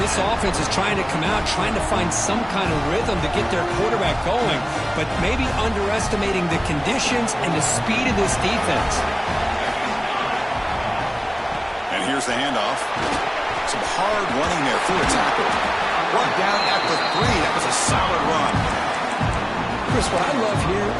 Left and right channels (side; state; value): both; identical; correlation 1.00